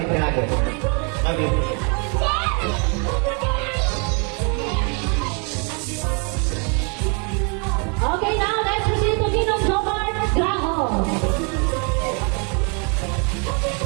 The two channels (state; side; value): quieter; left; 36.0 dB